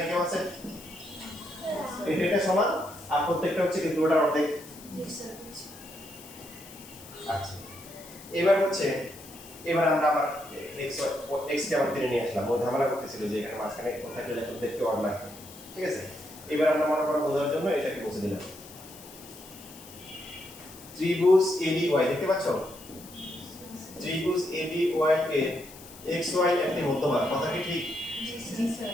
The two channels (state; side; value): noise; left; hiss, 18 dB below the sound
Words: কেমন আছে? এটা সমান আর প্রত্যেকটা হচ্ছে কি পুরোটার অর্ধেক। আচ্ছা, এবার হচ্ছে এবার আমরা আবার এক্স কে আবার টেনে নিয়ে আসলাম, ও ঝামেলা করতেছিল যে এখানে মাঝখানে কোথায় গেলে দেখতে অড লাগে। ঠিক আছে, এবার আমরা মনে করো বোঝার জন্য এটাকে বসে দিলাম। ত্রিভুজ এবি ওয়াই দেখতে পাচ্ছ, ত্রিভুজ এবি ওয়াই এর এক্স ওয়াই একটি মধ্যমা, কথা কি ঠিক?